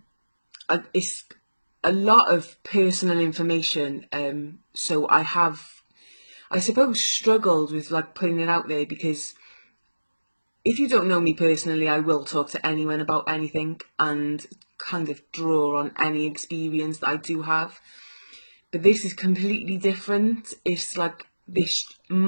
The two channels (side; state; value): both; inverted; correlation -1.00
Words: It's a lot of personal information, so I suppose struggled with like putting it out there, because if you don't know me personally, I will talk to anyone about anything and kind of draw on any experience that I do have. But this is completely different. It's like this